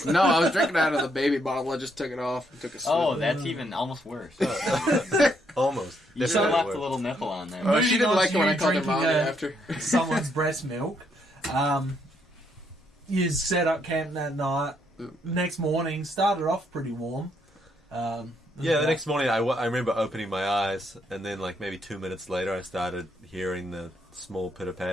No, I was drinking out of the baby bottle. I just took it off and took a sip. Oh, that's even almost worse. Almost. You should have left Definitely a little nipple on there. Oh, she didn't like it when I called her Drinking mommy after. someone's breast milk. You set up camp that night. Next morning, started off pretty warm. Yeah, the next morning I remember opening my eyes, and then like maybe 2 minutes later I started hearing the small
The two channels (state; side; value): normal; both; correlation 0.74